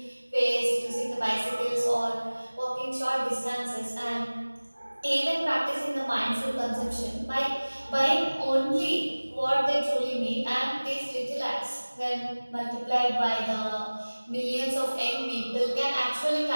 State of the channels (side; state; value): both; inverted; correlation -1.00